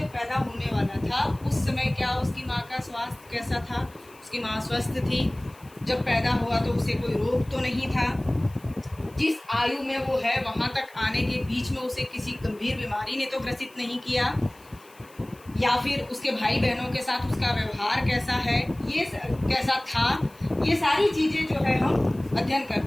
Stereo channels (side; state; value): left; noise; hiss, 26 dB below the sound